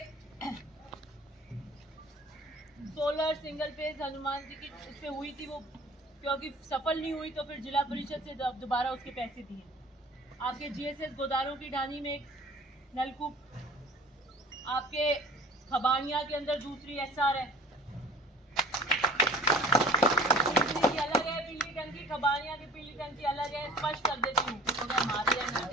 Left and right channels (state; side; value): normal; both; correlation 0.46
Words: solar single phase Hanuman ji की उस पे हुई थी, वो क्योंकि सफल नहीं हुई तो फिर जिला परिषद से दोबारा उसके पैसे दिए। आपके जीएसएस गोदारों की ढानी में एक नलकूप। आपके खबानिया के अंदर दूसरी एसआर है, अलग है। पीली टंकी खबानिया की पीली टंकी अलग है, स्पष्ट कर देती हूँ